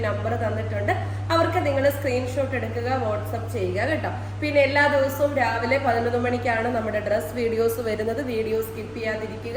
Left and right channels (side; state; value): both; identical; correlation 1.00